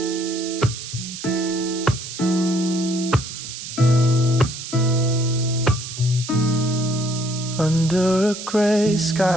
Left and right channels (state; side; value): noise; right; hiss, 9 dB below the sound